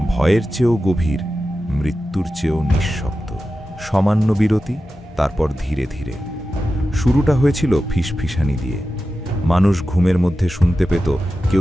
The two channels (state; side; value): normal; both; correlation 0.93